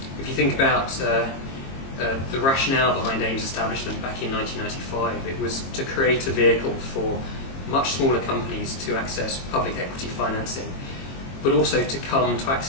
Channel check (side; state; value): right; late; 22 ms